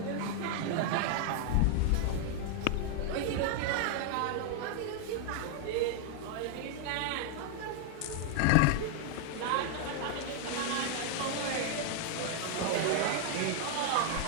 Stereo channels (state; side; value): different; both; correlation 0.00